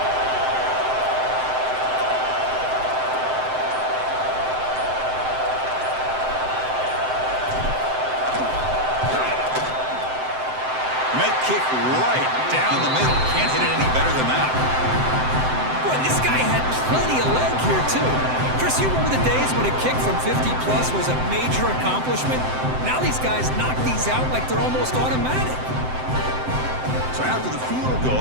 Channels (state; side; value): late; left; 7.8 ms